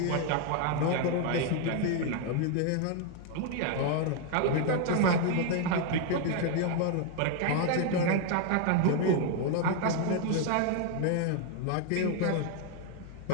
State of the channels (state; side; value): different; both; correlation 0.00